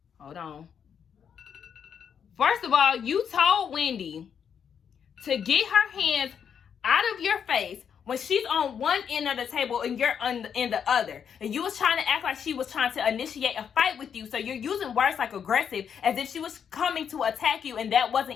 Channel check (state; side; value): quieter; right; 7.6 dB